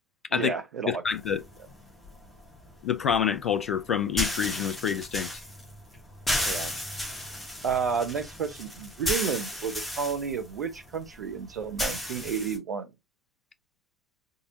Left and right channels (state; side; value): normal; both; correlation 0.38